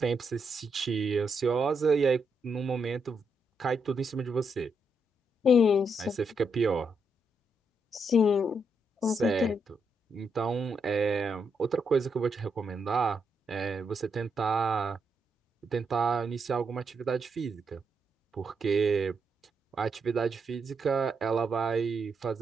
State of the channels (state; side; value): normal; both; correlation 0.80